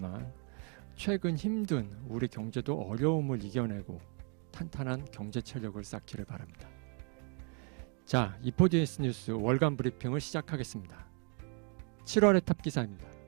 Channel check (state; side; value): quieter; left; 39.2 dB